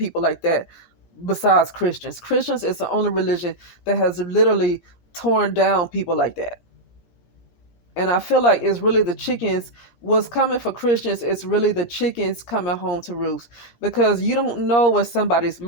like that besides Christians. Christians is the only religion that has literally torn down people like that. And I feel like it's really the chickens. What's coming for Christians is really the chickens coming home to roost, because you don't know where somebody's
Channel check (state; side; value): late; right; 17 ms